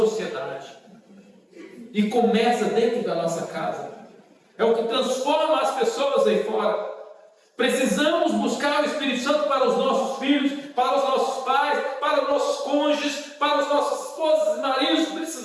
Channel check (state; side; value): identical; both; correlation 1.00